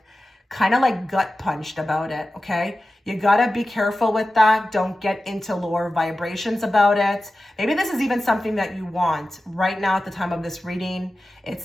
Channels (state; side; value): normal; both; correlation 0.94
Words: kind of like gut punched about it, okay? You gotta be careful with that. Don't get into lower vibrations about it. Maybe this is even something that you want right now at the time of this reading. It's